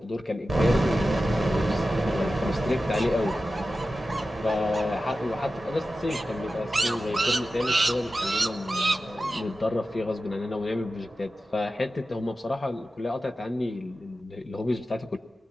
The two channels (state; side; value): normal; both; correlation 0.93